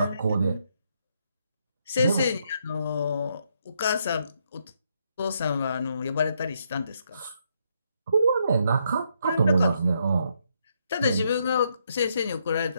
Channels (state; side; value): inverted; both; correlation -0.76